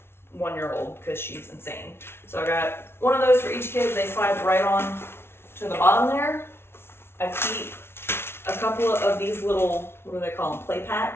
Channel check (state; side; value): late; right; 0.12 ms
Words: 1-year-old because she's insane. So I got one of those for each kid. They slide right on to the bottom there. I keep a couple of these little, what do they call them, play